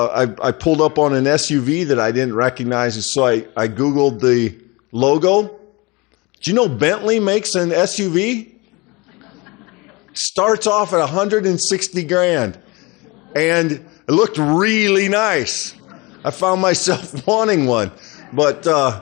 pulled up on an SUV that I didn't recognize, and so I Googled the logo. Do you know Bentley makes an SUV? Starts off at $160,000, and it looked really nice. I found myself wanting one, but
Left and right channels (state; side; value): quieter; right; 25.1 dB